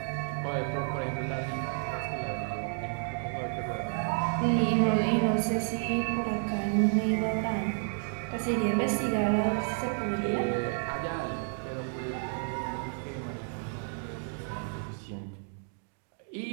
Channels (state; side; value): silent; left; 57 dB below the other